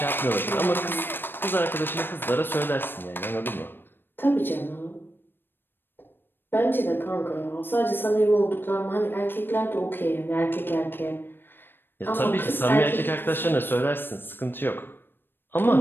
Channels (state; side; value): late; right; 0.098 ms